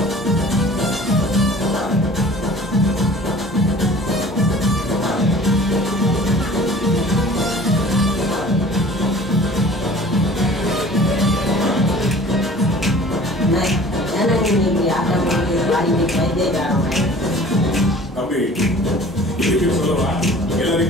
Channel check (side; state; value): both; normal; correlation 0.47